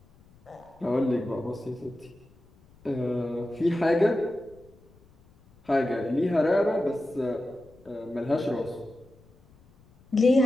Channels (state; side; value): noise; left; rumble, 28 dB below the sound